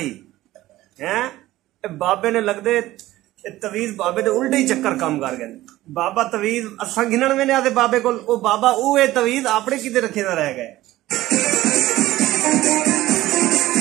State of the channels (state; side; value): quieter; left; 16.2 dB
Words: है। बाबे ने लगदे तवीज बाबे दे उल्टे ही चक्कर काम कर गए। बाबा तवीज असा गिनन में नहीं आते बाबे को, बाबा वो तवीज अपने किते रखे ना रह गए।